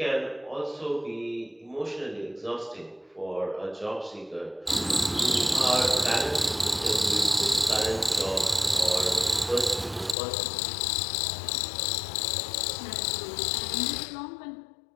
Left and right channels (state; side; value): drops out; right; at 10.2 s